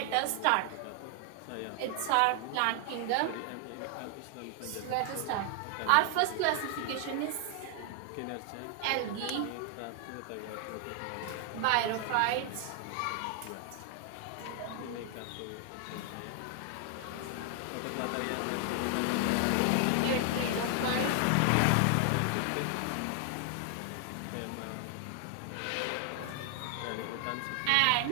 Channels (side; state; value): both; different; correlation 0.00